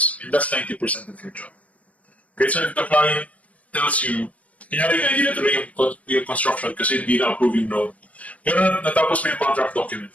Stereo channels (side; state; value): right; late; 0.068 ms